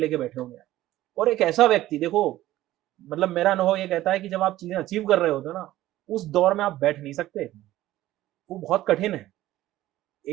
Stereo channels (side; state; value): left; quieter; 15.1 dB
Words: बैठे होंगे। और एक ऐसा व्यक्ति देखो, मतलब मेरा अनुभव ये कहता है कि जब आप चीजें अचीव कर रहे होते हो ना, उस दौर में आप बैठ नहीं सकते, वो बहुत कठिन है।